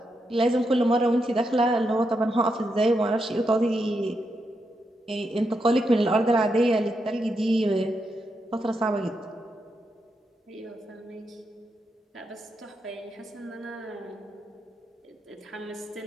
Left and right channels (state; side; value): normal; both; correlation 0.83